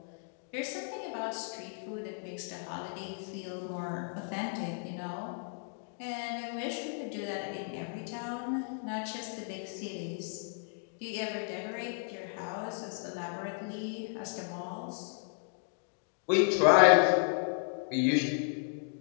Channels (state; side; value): silent; right; 55 dB below the other